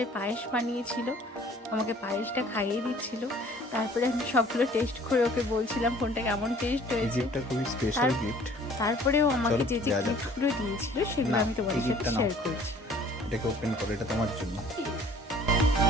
পায়েস বানিয়েছিল, আমাকে পায়েসটা খাইয়ে দিচ্ছিল। তারপরে আমি সবগুলো টেস্ট করে ওকে বলছিলাম কোনটা কেমন টেস্ট হয়েছে। গিফটটা খুবই স্পেশাল গিফট। তারপরেও আমাকে চলো, যে যে যা যাক। গিফটগুলো দিয়েছিল সেগুলো না, আমি তোমাদের এই সাথে gift-টা নাও। শেয়ার করছি। এটাকে ওপেন করো, এটা তোমার জন্য।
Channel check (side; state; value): both; normal; correlation 0.53